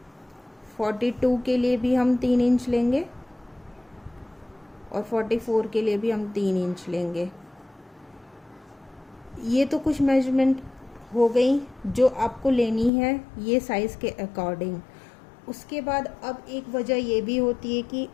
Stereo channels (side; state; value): right; drops out; at 12.9 s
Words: 42 के लिए भी हम 3 इंच लेंगे और 44 के लिए भी हम 3 इंच लेंगे। ये तो कुछ मेजरमेंट हो गई जो आपको लेनी है ये साइज़ के अकॉर्डिंग। उसके बाद अब एक वजह ये भी होती है कि